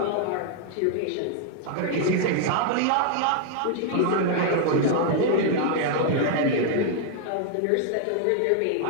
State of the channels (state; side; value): different; both; correlation 0.00